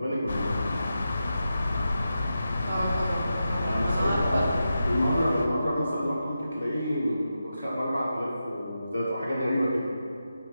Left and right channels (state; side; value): inverted; both; correlation -0.89